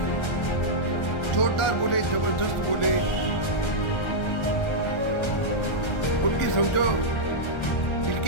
जोरदार बोले, जबरदस्त बोले, उनकी समझो दिल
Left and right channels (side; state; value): right; late; 1.3 ms